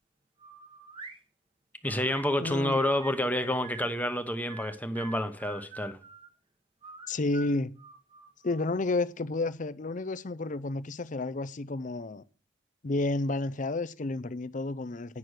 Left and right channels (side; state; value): both; normal; correlation 0.60